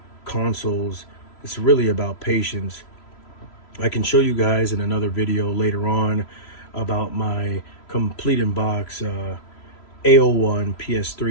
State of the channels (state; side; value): late; right; 3.0 ms